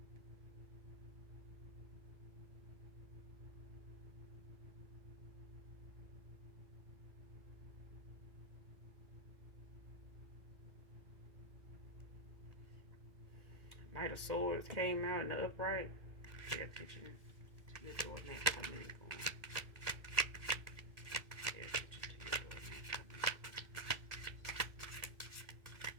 Knight of Swords came out in the upright. Pay attention to your doormat coming and going. Pay attention to your doormat coming.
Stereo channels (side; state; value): left; late; 1.8 ms